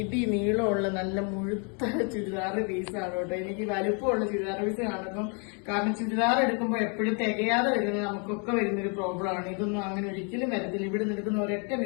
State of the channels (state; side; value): quieter; right; 37.8 dB